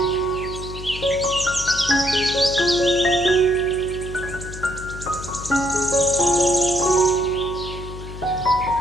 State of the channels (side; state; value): left; noise; hum, 11 dB below the sound